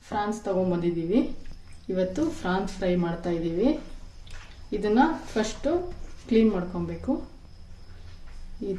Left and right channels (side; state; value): both; identical; correlation 1.00